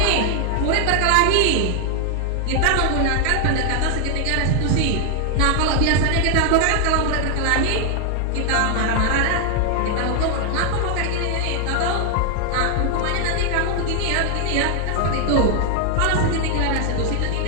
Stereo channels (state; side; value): different; both; correlation 0.00